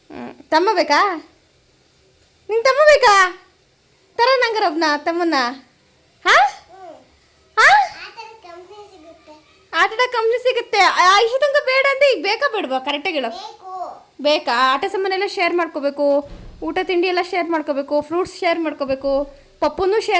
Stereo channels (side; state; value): both; identical; correlation 1.00